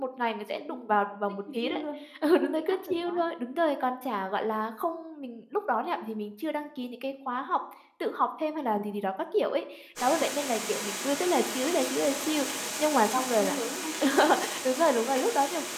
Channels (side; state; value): both; identical; correlation 1.00